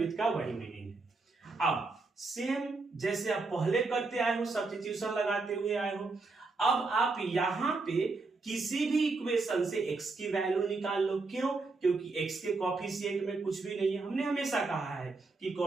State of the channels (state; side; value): quieter; left; 3.8 dB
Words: का वही मीनिंग है। अब सेम जैसे आप पहले करते आए हो, सब्स्टिट्यूशन लगाते हुए आए हो, अब आप यहां पे किसी भी इक्वेशन से x की वैल्यू निकाल लो। क्यों? क्योंकि x के कोफिशिएंट में कुछ भी नहीं है। हमने हमेशा कहा है कि